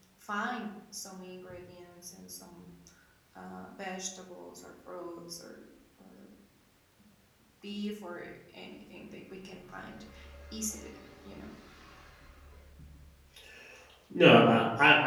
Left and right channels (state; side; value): identical; both; correlation 1.00